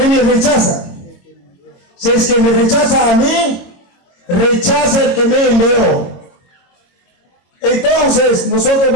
me rechazan. Si es que me rechaza a mí, rechaza el que me envió. Entonces, nosotros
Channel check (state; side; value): late; right; 22 ms